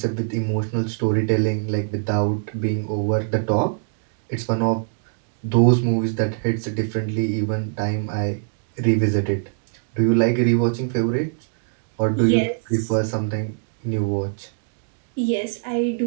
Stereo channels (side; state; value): left; silent; digital silence